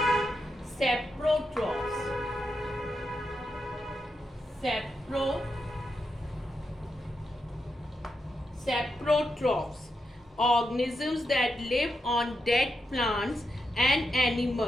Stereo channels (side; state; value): both; normal; correlation 0.85